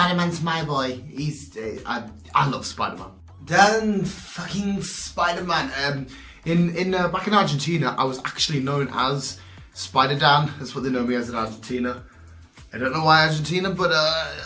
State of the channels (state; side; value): identical; both; correlation 1.00